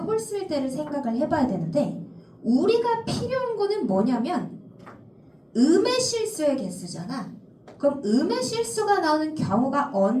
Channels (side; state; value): both; identical; correlation 1.00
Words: 때를 생각을 해봐야 되는데 우리가 필요한 거는 뭐냐면 음의 실수의 개수잖아. 그럼 음의 실수가 나오는 경우가